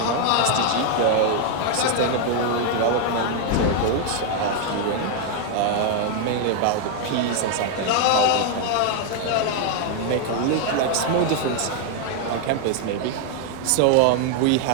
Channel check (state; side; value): different; both; correlation 0.00